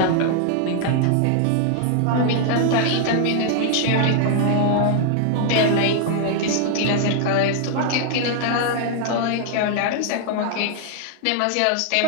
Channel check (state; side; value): different; both; correlation 0.00